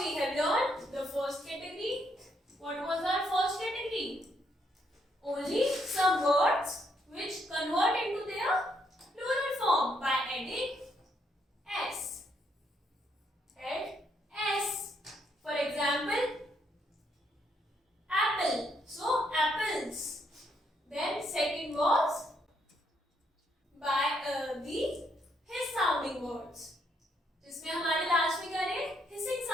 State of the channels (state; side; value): normal; both; correlation 0.74